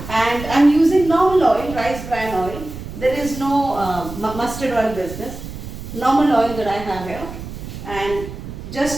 I'm using normal oil, rice bran oil. There is no mustard oil business. Normal oil that I have here, and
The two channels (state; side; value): noise; right; rumble, 11 dB below the sound